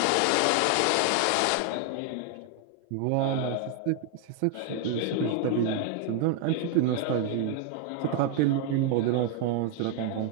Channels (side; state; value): both; different; correlation 0.00